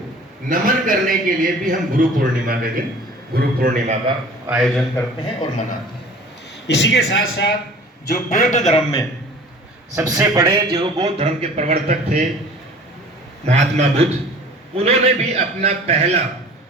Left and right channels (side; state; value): both; normal; correlation 0.45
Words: नमन करने के लिए भी हम गुरु पूर्णिमा के दिन गुरु पूर्णिमा का आयोजन करते हैं और मनाते हैं। इसी के साथ साथ जो बौद्ध धर्म में सबसे बड़े जो बौद्ध धर्म के प्रवर्तक थे महात्मा बुद्ध, उन्होंने भी अपना पहला